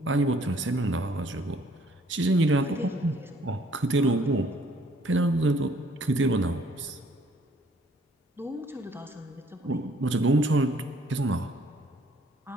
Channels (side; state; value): both; normal; correlation 0.61